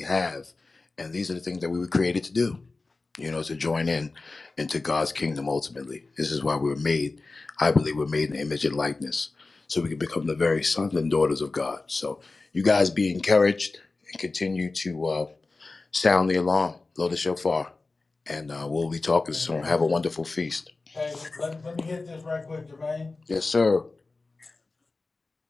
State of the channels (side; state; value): right; quieter; 3.6 dB